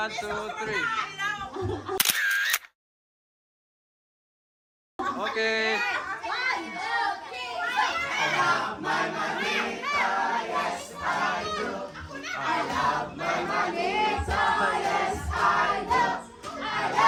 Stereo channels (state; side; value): identical; both; correlation 1.00